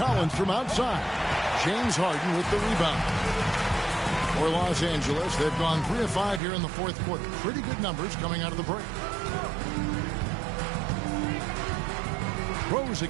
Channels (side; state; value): left; drops out; at 6.4 s